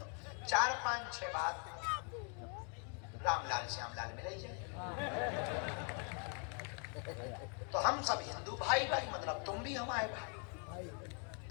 4-5-6 बात रामलाल श्यामलाल मिल ही जाए। तो हम सब हिंदू भाई भाई, मतलब तुम भी हमारे भाई।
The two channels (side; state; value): right; quieter; 39.7 dB